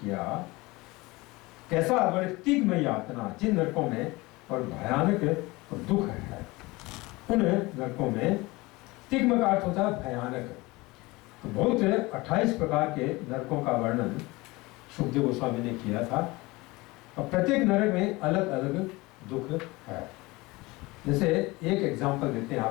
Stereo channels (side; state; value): right; quieter; 22.3 dB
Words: कैसा? बड़े तिग्म यातना, जिन नरकों में और भयानक और दुख है, उन नरकों में। तिग्म का अर्थ होता है भयानक। तो बहुत 28 प्रकार के नरकों का वर्णन सुखदेव गोस्वामी ने किया था, और प्रत्येक नरक में अलग अलग दुख है। जैसे एक एग्जाम्पल देते हैं